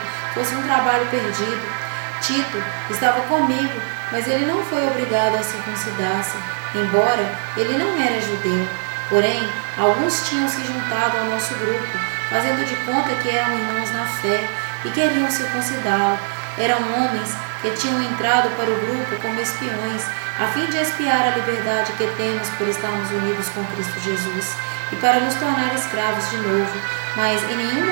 fosse um trabalho perdido. Tito estava comigo, mas ele não foi obrigado a circuncidar-se, embora ele não era judeu. Porém, alguns tinham se juntado ao nosso grupo, fazendo de conta que eram irmãos na fé e queriam circuncidá-lo. Eram homens que tinham entrado para o grupo como espiões, a fim de espiar a liberdade que temos por estarmos unidos com Cristo Jesus e para nos tornar escravos de novo. Mas em nenhum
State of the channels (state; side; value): silent; left; digital silence